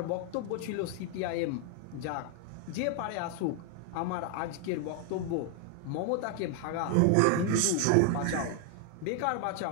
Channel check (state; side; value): different; both; correlation 0.00